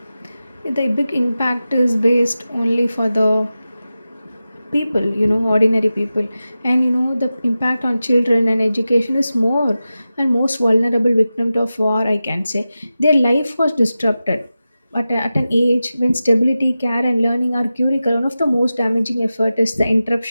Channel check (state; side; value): inverted; both; correlation -0.93